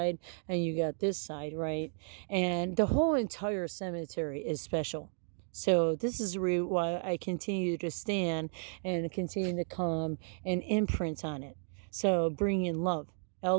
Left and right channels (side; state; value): left; silent; 55 dB below the other